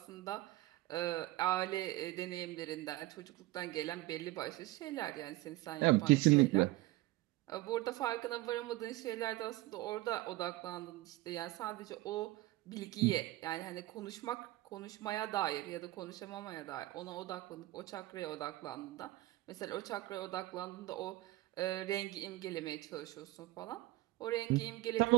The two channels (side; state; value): left; quieter; 18.4 dB